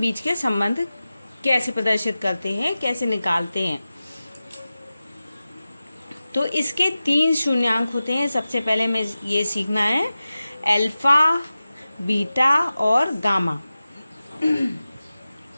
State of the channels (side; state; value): both; inverted; correlation -0.95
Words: के संबंध कैसे प्रदर्शित करते हैं, कैसे निकालते हैं। तो इसके 3 शून्यांक होते हैं। सबसे पहले हमें ये सीखना है अल्फा, बीटा और गामा।